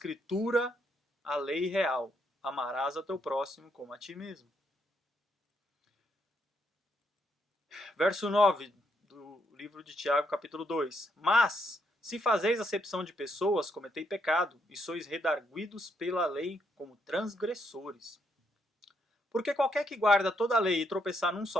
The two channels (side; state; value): both; normal; correlation 0.76